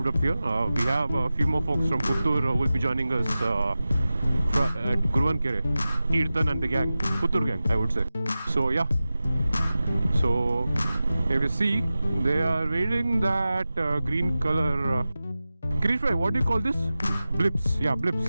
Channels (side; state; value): both; inverted; correlation -0.95